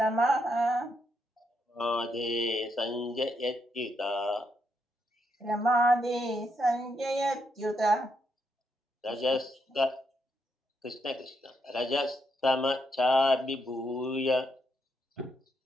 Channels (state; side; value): normal; both; correlation 0.79